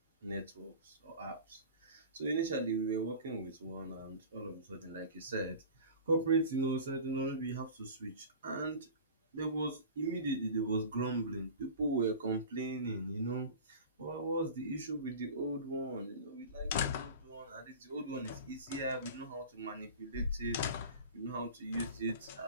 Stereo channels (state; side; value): inverted; both; correlation -0.36